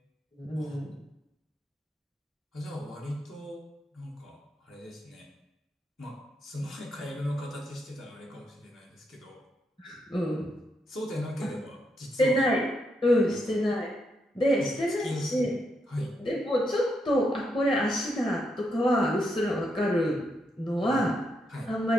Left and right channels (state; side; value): normal; both; correlation 0.80